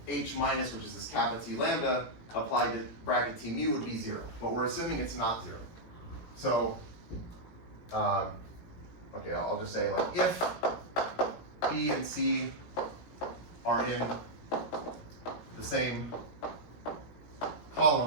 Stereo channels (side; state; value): right; late; 17 ms